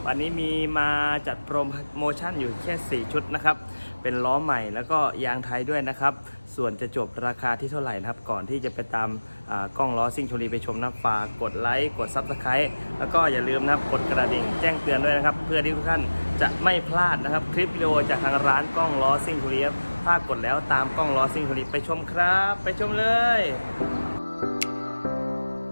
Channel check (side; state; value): both; inverted; correlation -1.00